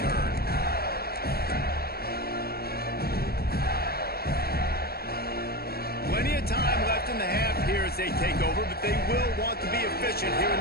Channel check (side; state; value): right; late; 0.45 ms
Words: Plenty of time left in the half here as they take over, but they will want to be efficient here in